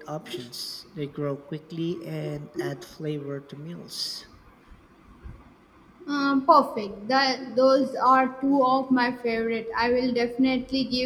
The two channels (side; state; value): both; identical; correlation 1.00